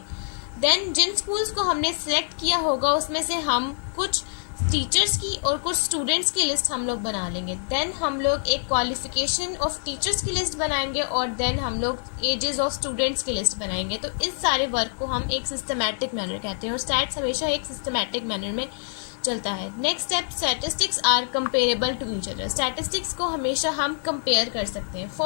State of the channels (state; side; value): silent; right; digital silence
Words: देन जिन स्कूल्स को हमने सेलेक्ट किया होगा उसमें से हम कुछ टीचर्स की और कुछ स्टूडेंट्स की लिस्ट हम लोग बना लेंगे। देन हम लोग एक क्वालिफिकेशन ऑफ टीचर्स की लिस्ट बनाएंगे और देन हम लोग एजेस ऑफ स्टूडेंट्स की लिस्ट बनाएंगे। तो इस सारे वर्क को हम एक सिस्टमैटिक मैनर कहते हैं और स्टैट्स हमेशा एक सिस्टमैटिक मैनर में चलता है। Next step, statistics are comparable to each other. Statistics को हमेशा हम कंपेयर कर सकते हैं।